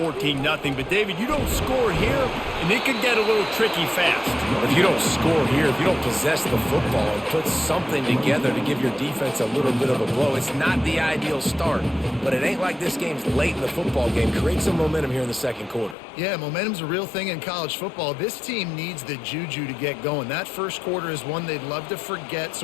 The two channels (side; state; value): right; drops out; at 16.0 s